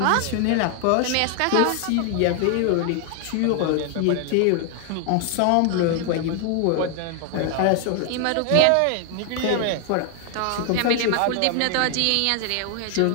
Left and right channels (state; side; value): different; both; correlation 0.00